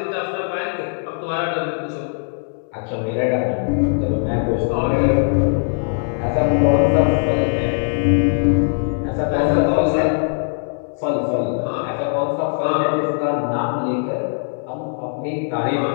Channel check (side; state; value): right; silent; digital silence